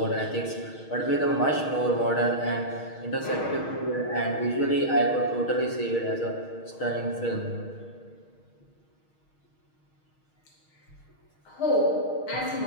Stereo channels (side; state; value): right; late; 6.4 ms